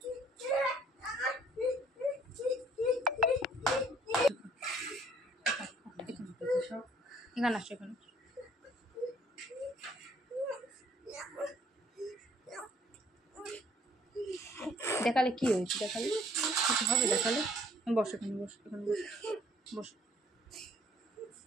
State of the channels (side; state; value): both; normal; correlation 0.60